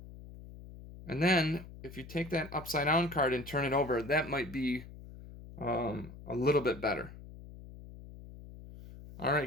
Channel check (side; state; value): left; noise; hum, 15 dB below the sound